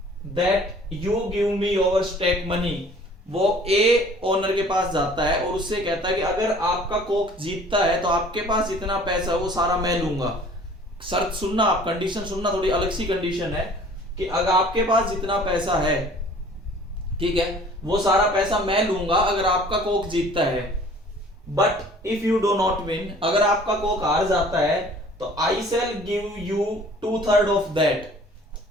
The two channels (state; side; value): normal; both; correlation 0.51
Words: that you give me your stake money. वो ए ओनर के पास जाता है और उससे कहता है कि अगर आपका कॉक जीतता है तो आपके पास जितना पैसा है वो सारा मैं लूंगा। शर्त सुनना आप, कंडीशन सुनना, थोड़ी अलग सी कंडीशन है कि अगर आपके पास जितना पैसा है, ठीक है, वो सारा पैसा मैं लूंगा अगर आपका कॉक जीतता है। But if you do not win, अगर आपका कॉक हार जाता है तो I shall give you 2/3 of that.